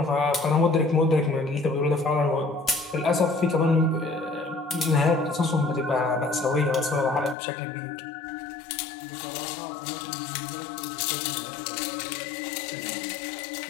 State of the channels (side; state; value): right; drops out; at 7.4 s